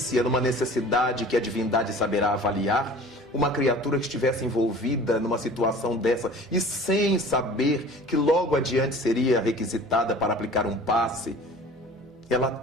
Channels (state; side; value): normal; both; correlation 0.44